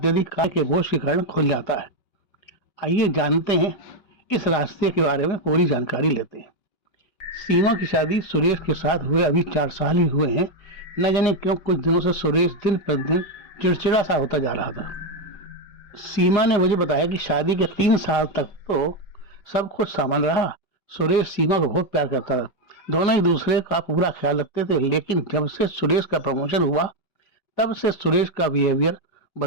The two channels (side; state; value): right; late; 5.2 ms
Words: कार्य के बोझ के कारण खुल जाता है। आइए जानते हैं इस रास्ते के बारे में, पूरी जानकारी लेते हैं। सीमा की शादी सुरेश के साथ हुए अभी 4 साल ही हुए हैं। न जाने क्यों कुछ दिनों से सुरेश दिन प्रतिदिन चिड़चिड़ा सा होता जा रहा था। सीमा ने मुझे बताया कि शादी के 3 साल तक तो सब कुछ सामान्य रहा। सुरेश सीमा को बहुत प्यार करता था, दोनों एक दूसरे का पूरा ख्याल रखते थे। लेकिन जब से सुरेश का प्रमोशन हुआ तब से सुरेश का बिहेवियर